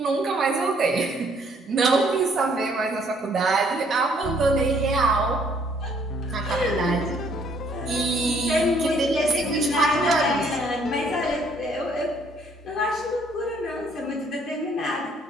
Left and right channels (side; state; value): both; normal; correlation 0.64